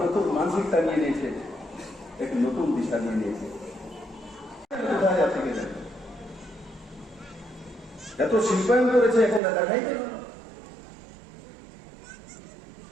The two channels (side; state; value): left; drops out; at 9.4 s